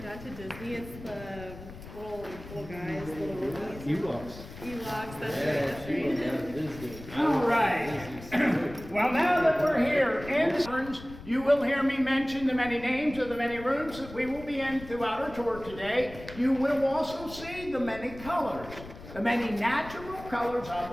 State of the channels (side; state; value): left; noise; rumble, 15 dB below the sound